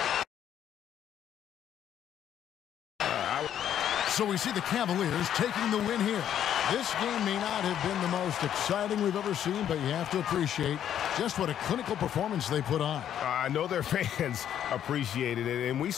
so we see the Cavaliers taking the win here. This game may not have been the most exciting we've ever seen, but you have to appreciate just what a clinical performance they put on. I know their fans appreciated it, and we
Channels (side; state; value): right; quieter; 10.1 dB